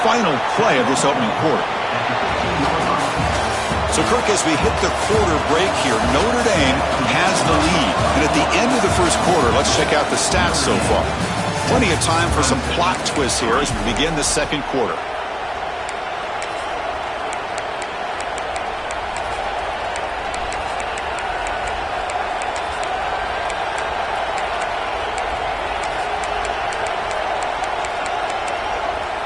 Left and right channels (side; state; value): both; identical; correlation 1.00